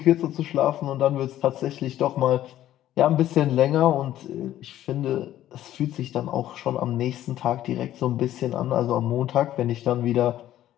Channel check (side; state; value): right; quieter; 12.8 dB